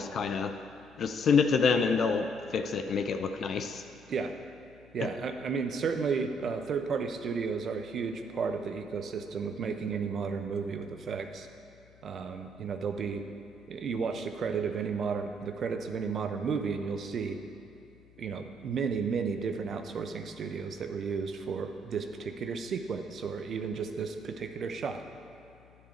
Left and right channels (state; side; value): noise; left; hum, 25 dB below the sound